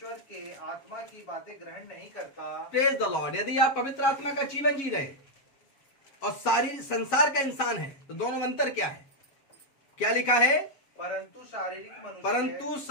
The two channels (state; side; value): late; right; 7.3 ms